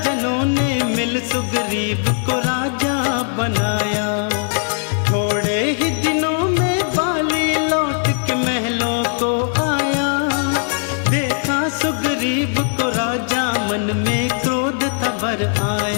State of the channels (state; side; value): silent; right; digital silence